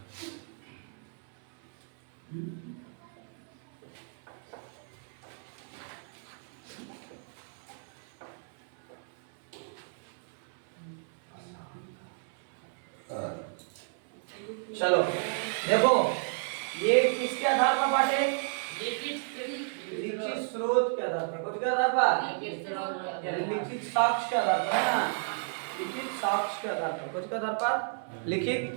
चलो देखो ये किसके आधार पर बांटे? लिखित स्रोत के आधार पर। कुछ के आधार पर? लिखित साक्ष्य के आधार पर, है ना? लिखित साक्ष्य के आधार पर। कुछ के आधार पर?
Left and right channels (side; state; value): left; silent; 57 dB below the other